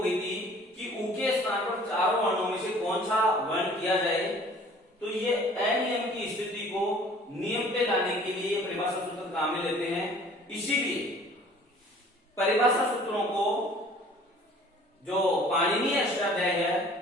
थी कि उ के स्थान पर चारों वर्णों में से कौन सा वर्ण किया जाए, तो ये अनियम की स्थिति को नियम पे लाने के लिए परिभाषा सूत्र काम में लेते हैं। इसीलिए परिभाषा सूत्रों को जो पाणिनीय अष्टाध्याय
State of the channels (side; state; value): both; normal; correlation 0.51